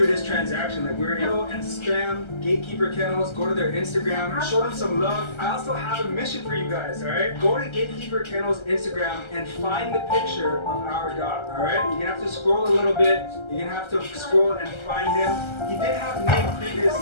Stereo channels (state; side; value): late; right; 1.3 ms